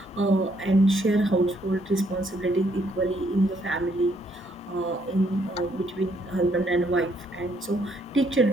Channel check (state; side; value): normal; both; correlation 0.70